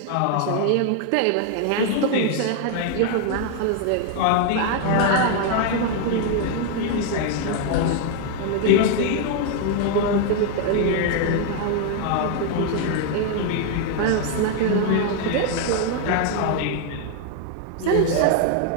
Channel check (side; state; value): both; different; correlation 0.00